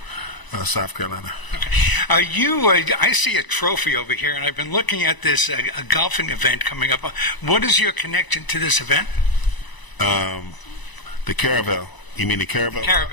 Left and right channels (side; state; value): right; late; 1.0 ms